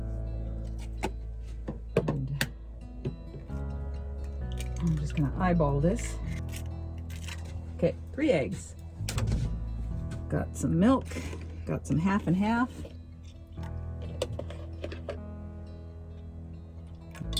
And I'm just gonna eyeball this. Okay, 3 eggs. Got some milk, got some half and half.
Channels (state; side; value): identical; both; correlation 1.00